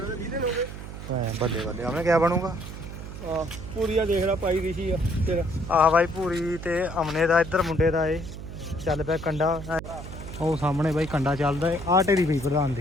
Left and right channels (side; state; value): right; noise; hum, 11 dB below the sound